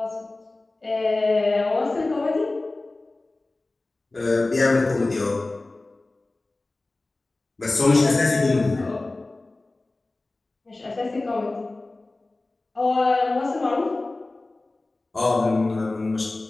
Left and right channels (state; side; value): quieter; right; 3.1 dB